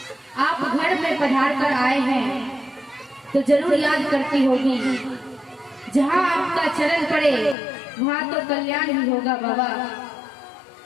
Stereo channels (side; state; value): right; drops out; at 7.6 s